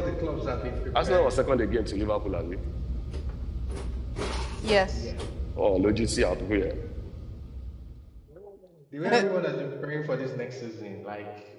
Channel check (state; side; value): identical; both; correlation 1.00